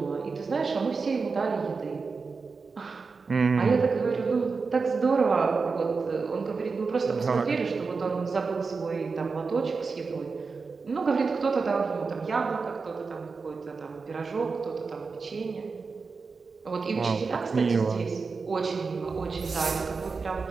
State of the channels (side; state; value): left; quieter; 4.6 dB